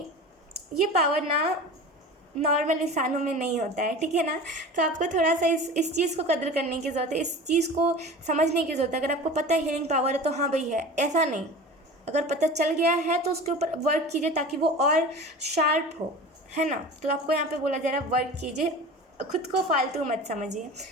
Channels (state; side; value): normal; both; correlation 0.36